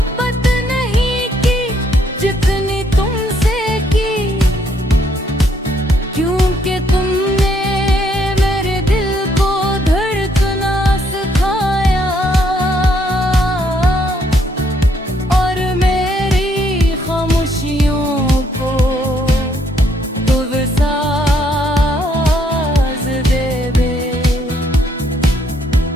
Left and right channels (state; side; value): normal; both; correlation 0.70